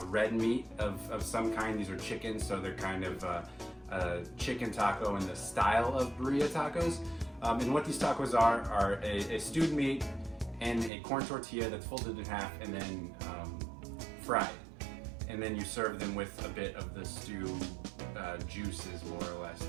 red meat of some kind. These are chicken, so they're kind of a chicken taco in the style of birria tacos. And what these tacos are a stewed meat and a corn tortilla that's folded in half and then fried. And then you serve them with a bit of the stew juices, more or less,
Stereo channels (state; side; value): drops out; left; at 10.9 s